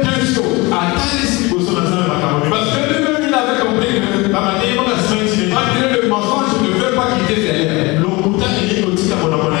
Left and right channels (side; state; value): right; quieter; 24.2 dB